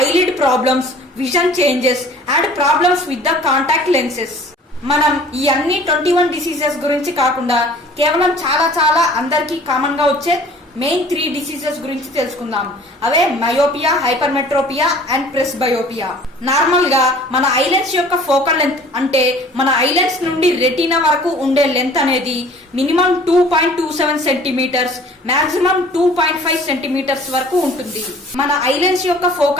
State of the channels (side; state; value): both; normal; correlation 0.49